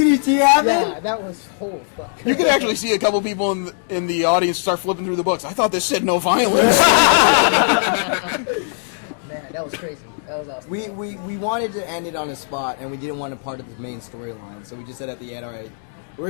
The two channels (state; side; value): silent; right; digital silence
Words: happened. Yeah, that was whole fuck. You could actually see a couple people in the audience start flipping through the books. I thought this said no violence. Man, that was crazy. That was awesome. We wanted to end it on a spot, and we didn't want to part of the main storyline, so we just said at the end, all right, we